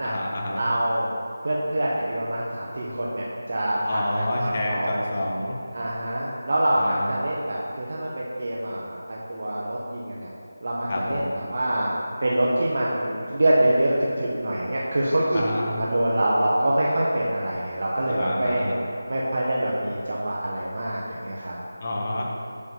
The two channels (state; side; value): inverted; both; correlation -0.95